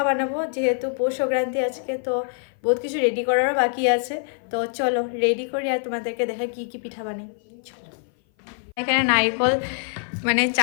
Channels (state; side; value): silent; right; 56 dB below the other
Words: বানাবো, যেহেতু পৌষ সংক্রান্তি আজকে, তো বহুত কিছু রেডি করারও বাকি আছে। তো চলো রেডি করি আর তোমাদেরকে দেখা কি কি পিঠা বানাই। চলো, এখানে নারকেল মানে